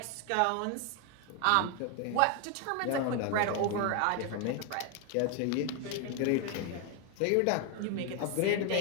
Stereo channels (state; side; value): different; both; correlation 0.01